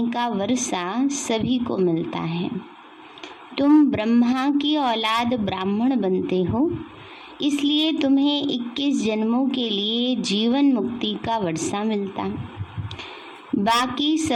का वर्षा सभी को मिलता है। तुम ब्रह्मा की औलाद ब्राह्मण बनते हो, इसलिए तुम्हें 21 जन्मों के लिए जीवन मुक्ति का वर्षा मिलता। बाकी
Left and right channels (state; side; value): identical; both; correlation 1.00